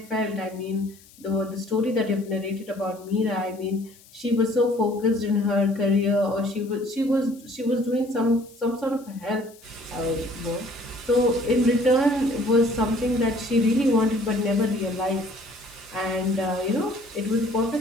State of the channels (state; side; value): noise; left; hiss, 25 dB below the sound